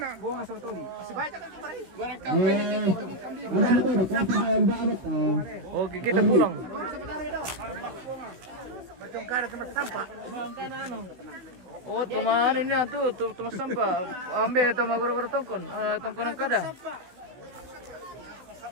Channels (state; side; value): late; left; 16 ms